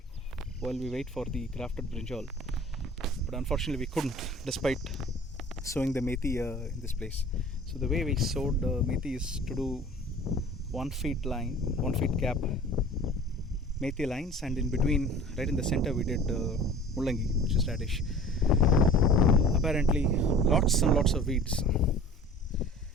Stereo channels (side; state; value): both; normal; correlation 0.44